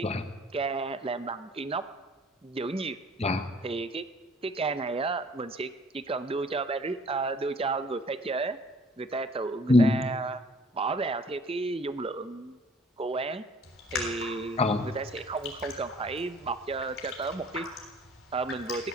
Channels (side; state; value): both; normal; correlation 0.54